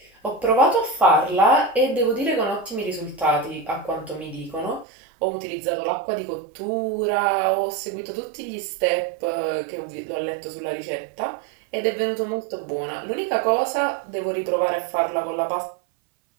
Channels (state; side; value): drops out; left; at 4.9 s